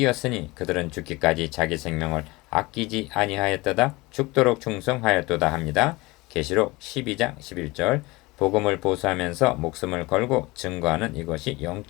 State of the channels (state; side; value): quieter; right; 22.3 dB